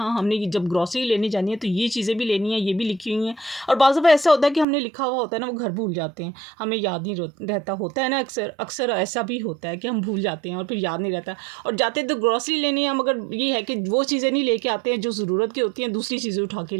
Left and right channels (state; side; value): drops out; left; at 4.7 s